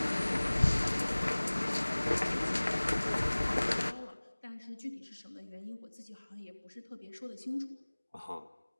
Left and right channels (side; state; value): both; inverted; correlation -1.00